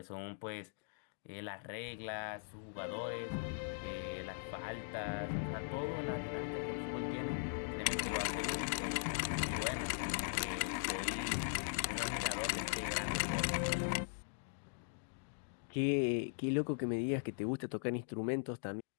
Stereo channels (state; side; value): silent; right; digital silence